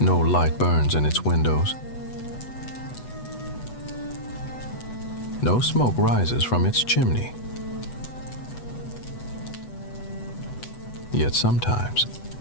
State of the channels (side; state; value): right; late; 8.1 ms